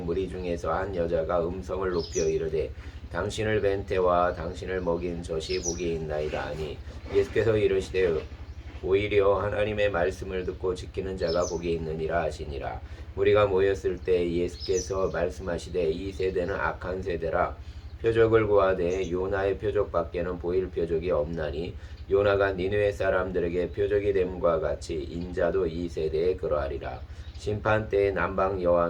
중에서 한 여자가 음성을 높여 이르되 당신을 뵌 때와 당신을 먹인 젖이 복이 있나이다 하니 예수께서 이르시되 오히려 하나님의 말씀을 듣고 지키는 자가 복이 있느니라 하시니라. 무리가 모였을 때 예수께서 말씀하시되 이 세대는 악한 세대라. 표적을 구하되 요나의 표적밖에는 보일 표적이 없나니 요나가 니느웨 사람들에게 표적이 됨과 같이 인자도 이 세대에 그러하리라. 심판 때에 남방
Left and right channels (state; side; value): identical; both; correlation 1.00